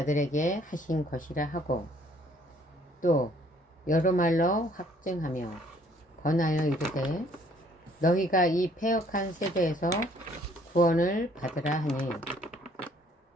하신 것이라 하고, 또 여러 말로 확증하며 권하여 이르되, 너희가 이 패역한 세대에서 구원을 받으라 하니,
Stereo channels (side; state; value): both; normal; correlation 0.61